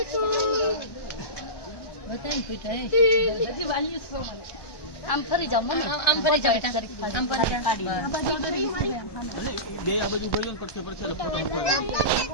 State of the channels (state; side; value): late; right; 1.2 ms